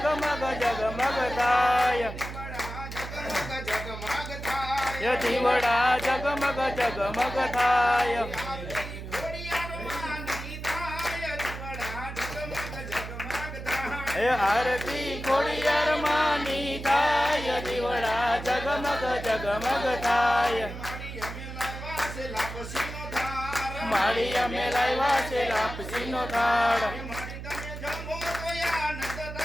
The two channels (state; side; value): noise; right; hum, 9 dB below the sound